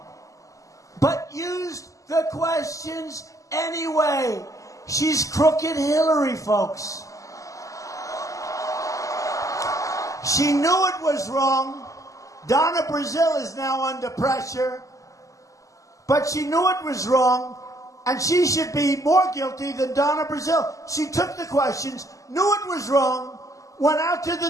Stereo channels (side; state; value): right; late; 0.16 ms